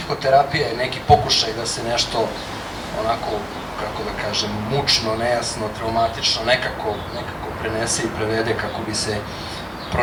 je neki pokušaj da se nešto onako, kako da kažem, mučno, nejasno, traumatično, nekako prenese i prevede kako bi se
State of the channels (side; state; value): both; identical; correlation 1.00